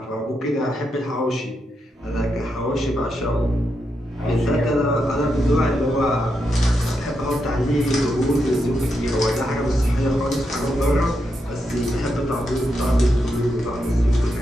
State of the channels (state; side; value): normal; both; correlation 0.84